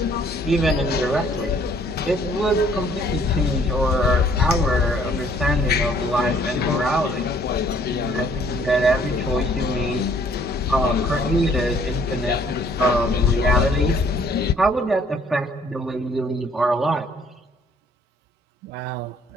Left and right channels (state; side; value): normal; both; correlation 0.61